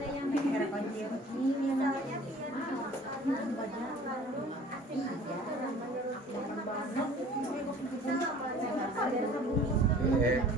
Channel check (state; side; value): normal; both; correlation 0.48